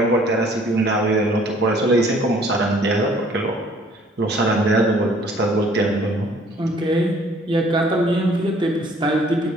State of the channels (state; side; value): normal; both; correlation 0.58